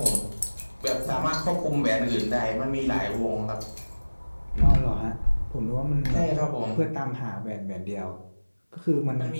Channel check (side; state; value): both; inverted; correlation -1.00